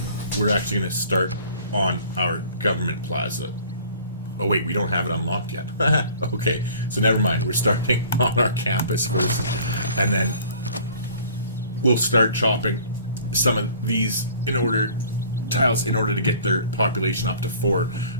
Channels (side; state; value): both; inverted; correlation -0.50